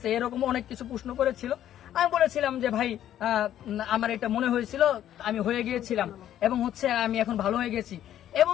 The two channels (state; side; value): quieter; right; 11.4 dB